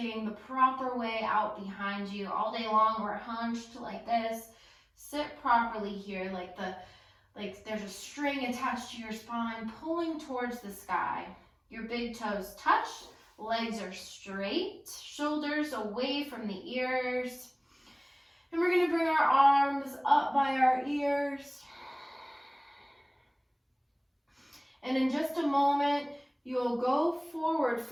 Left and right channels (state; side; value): identical; both; correlation 1.00